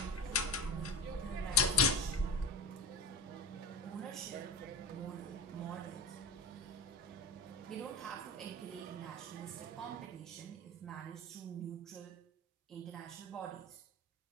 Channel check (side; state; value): both; normal; correlation 0.24